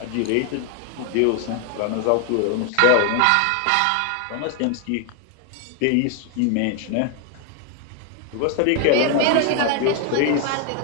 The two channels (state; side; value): different; both; correlation 0.01